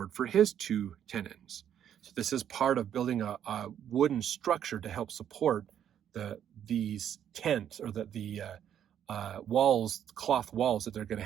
for his 2 tenons. So this is part of building a wooden structure to help support these tents, or the walls, cloth walls that they're going to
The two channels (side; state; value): left; quieter; 9.7 dB